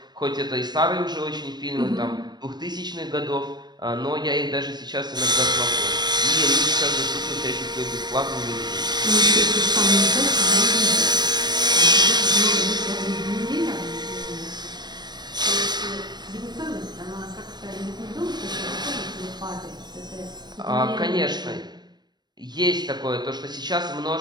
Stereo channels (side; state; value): left; late; 0.21 ms